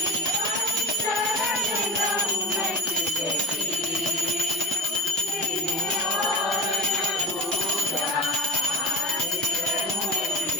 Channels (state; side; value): normal; both; correlation 0.33